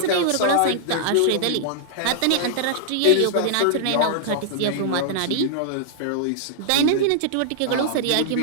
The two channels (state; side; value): different; both; correlation -0.01